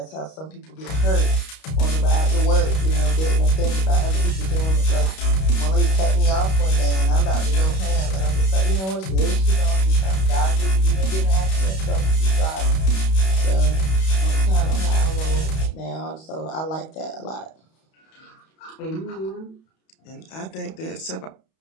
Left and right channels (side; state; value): right; late; 31 ms